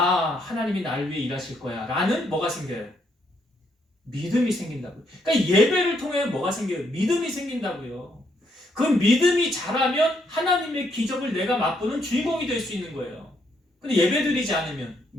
나를 위해 일하실 거야 라는 뭐가 생겨요? 믿음이 생긴다고요. 그러니까 예배를 통해 뭐가 생겨요? 믿음이 생긴다고요. 그 믿음이 자라면 하나님의 기적을 내가 맛보는 주인공이 될 수 있는 거예요. 근데 예배 드리지 않으면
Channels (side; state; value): both; normal; correlation 0.74